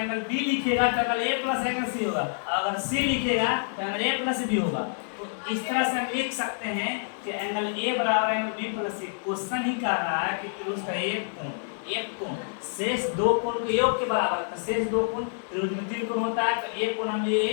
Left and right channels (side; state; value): right; silent; digital silence